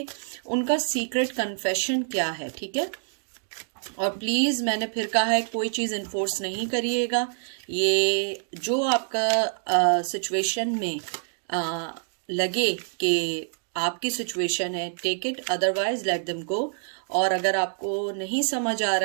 उनका सीक्रेट कन्फेशन क्या है, ठीक है। और प्लीज़ मैंने फिर कहा है कोई चीज़ इन्फोर्स नहीं करिएगा। ये जो आपका सिचुएशन में लगे कि आपकी सिचुएशन है, take it, otherwise let them go. और अगर आपको नहीं समझ आ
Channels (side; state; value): left; silent; digital silence